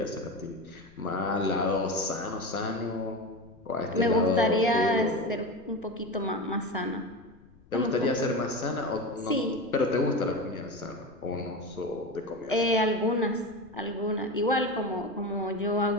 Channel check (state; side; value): noise; left; rumble, 27 dB below the sound